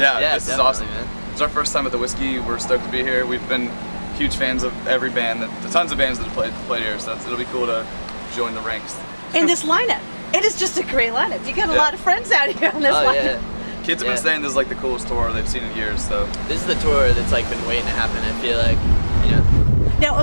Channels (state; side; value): inverted; both; correlation -1.00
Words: this is awesome. Man. It's our first time at the Whisky. We're stoked to be here. We've been huge fans of every band, tons of bands that have played here, so it'll be cool to join the ranks. And this lineup, it is just a great lineup. You got a lot of friends out here on this lineup. Yeah. Kids have been saying this is like the coolest tour they've seen in years, so. This is the tour that's like been waiting to happen, I feel like, you know. Now,